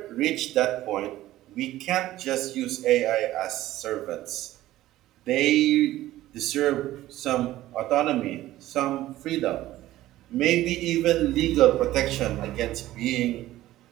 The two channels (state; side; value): quieter; left; 15.2 dB